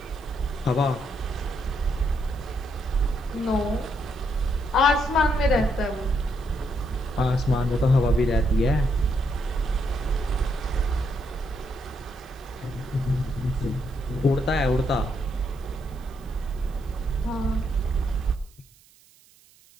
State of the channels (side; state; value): right; noise; hiss, 28 dB below the sound